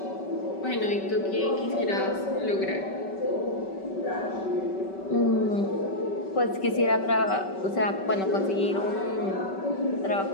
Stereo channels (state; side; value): late; right; 5.2 ms